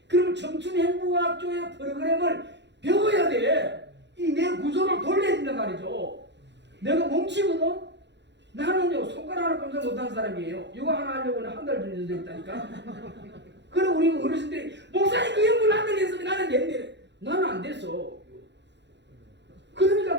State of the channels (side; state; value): left; late; 0.51 ms